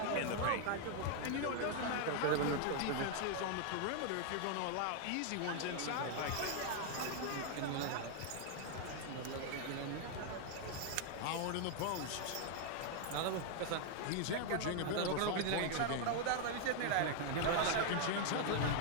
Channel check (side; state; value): both; different; correlation 0.00